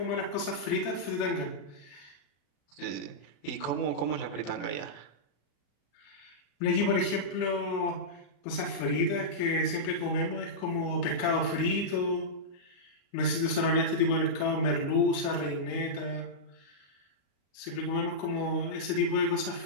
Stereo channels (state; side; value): late; right; 35 ms